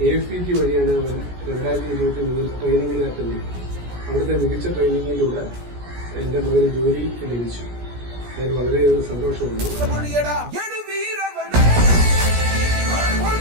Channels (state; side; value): late; left; 17 ms